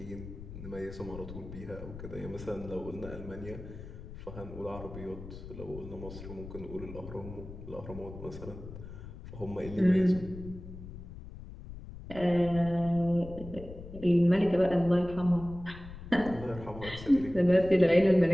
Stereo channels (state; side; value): noise; left; rumble, 13 dB below the sound